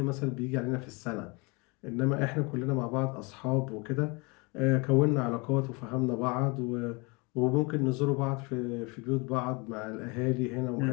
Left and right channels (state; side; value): quieter; right; 28.7 dB